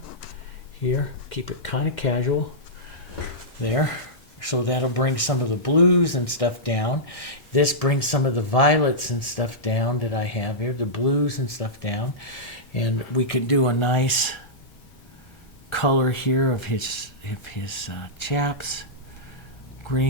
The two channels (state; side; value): late; right; 1.1 ms